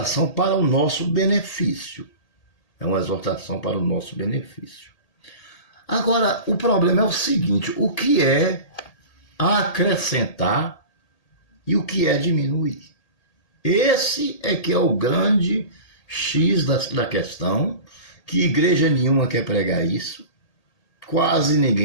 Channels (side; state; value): right; late; 1.8 ms